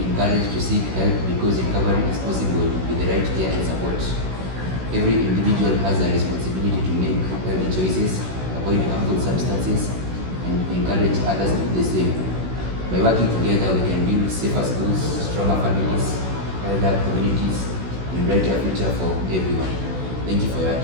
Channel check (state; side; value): late; left; 16 ms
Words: encouraged to seek help because recovery is possible with the right care and support. Every individual has a responsibility to make healthy choices, avoid harmful substances, and encourage others to do the same. By working together, we can build safer schools, stronger families, healthier communities, and brighter future for everyone. Thank you for your